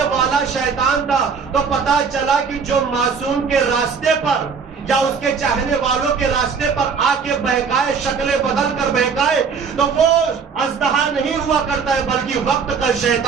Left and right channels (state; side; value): quieter; left; 5.8 dB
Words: والا شیطان تھا۔ تو پتا چلا کہ جو معصوم کے راستے پر یا اس کے چاہنے والوں کے راستے پر آ کے بہکائے، شکلیں بدل کر بہکائے، تو وہ اژدہا نہیں ہوا کرتا ہے بلکہ وقت کا